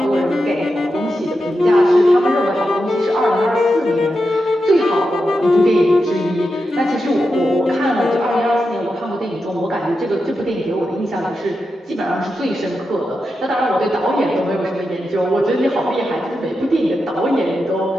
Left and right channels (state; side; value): normal; both; correlation 0.88